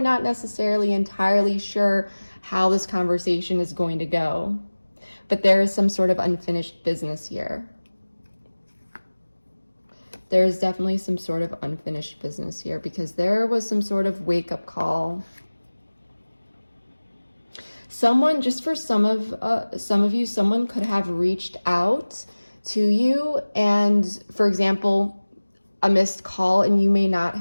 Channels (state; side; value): inverted; both; correlation -1.00